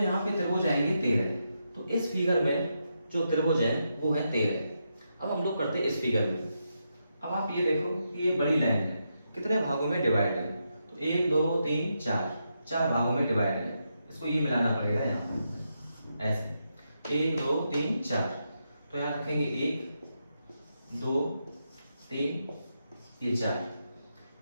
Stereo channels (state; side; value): inverted; both; correlation -0.84